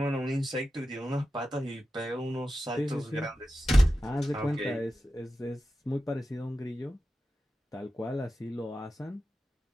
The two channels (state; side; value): normal; both; correlation 0.92